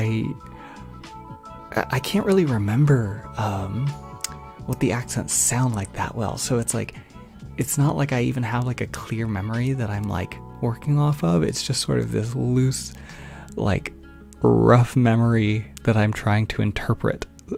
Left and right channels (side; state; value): both; identical; correlation 1.00